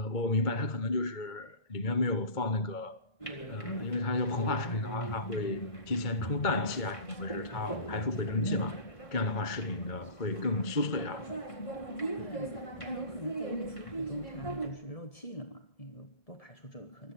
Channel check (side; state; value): right; late; 2.2 ms